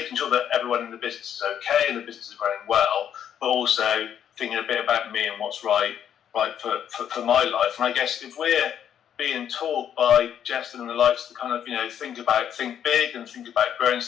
sure that everyone in the business is okay and the business is running well, but also thinking a bit about me and what's right for my life. And I guess if we're being taught by Justin and the likes to kind of, think big and think about growing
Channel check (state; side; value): quieter; right; 9.3 dB